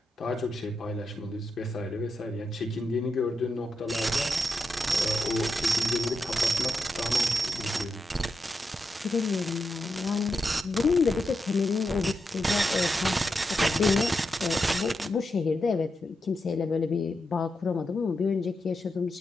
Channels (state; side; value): normal; both; correlation 0.86